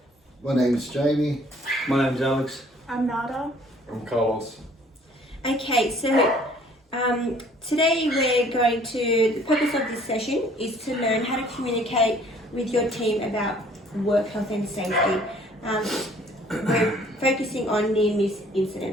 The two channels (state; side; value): normal; both; correlation 0.57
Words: My name's Jamie. My name's Alex. I'm Nada. I'm Carlos. Okay, so today we're going to, the purpose of this session is to learn how to communicate with your team about work health and safety. We're focusing on near-miss